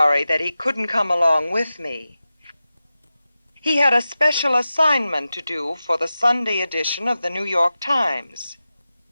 that he couldn't come along with me. He had a special assignment to do for the Sunday edition of the New York Times.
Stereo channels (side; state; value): both; inverted; correlation -0.94